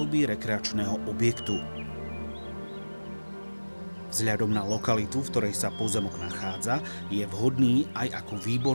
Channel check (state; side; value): inverted; both; correlation -1.00